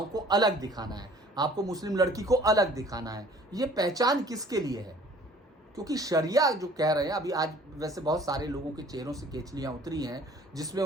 को अलग दिखाना है, आपको मुस्लिम लड़की को अलग दिखाना है। ये पहचान किसके लिए है? क्योंकि शरिया जो कह रहे हैं, अभी आज वैसे बहुत सारे लोगों के चेहरों से केचलियां उतरी हैं जिसमें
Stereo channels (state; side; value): normal; both; correlation 0.52